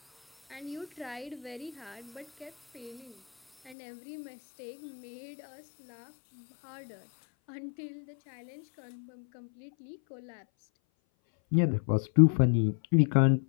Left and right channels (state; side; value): drops out; right; at 3.8 s